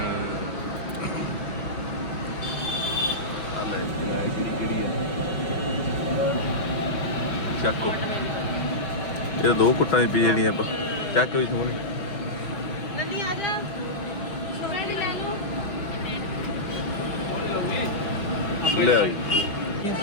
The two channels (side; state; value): right; late; 5.3 ms